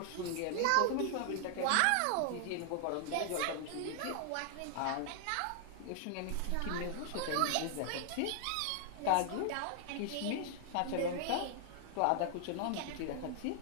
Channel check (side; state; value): both; different; correlation -0.01